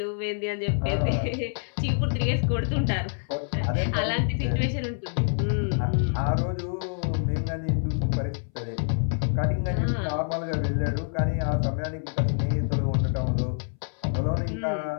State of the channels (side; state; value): right; silent; 60 dB below the other